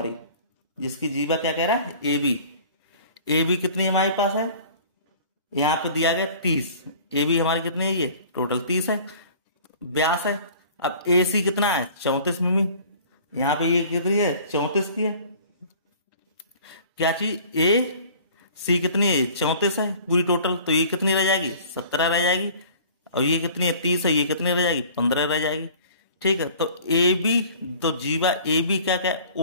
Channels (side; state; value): both; inverted; correlation -0.48